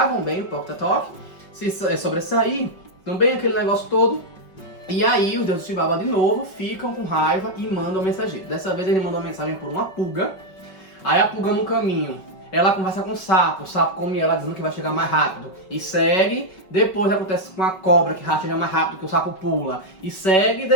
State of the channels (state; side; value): late; right; 5.3 ms